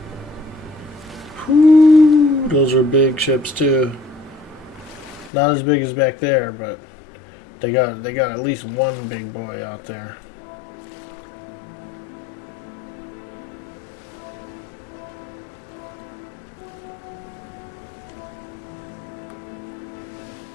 Whew, those are big ships too. Not as big as back there, but they got at least one big boy out there.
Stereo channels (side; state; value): right; drops out; at 5.3 s